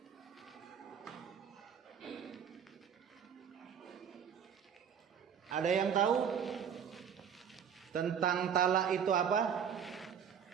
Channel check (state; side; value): quieter; left; 7.8 dB